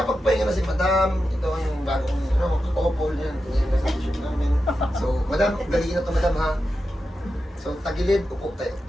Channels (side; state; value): both; normal; correlation 0.90